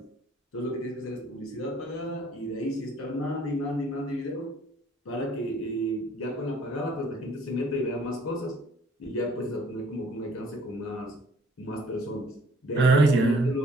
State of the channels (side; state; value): both; normal; correlation 0.59